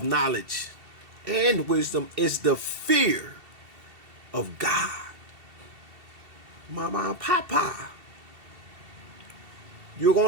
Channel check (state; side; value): late; left; 2.7 ms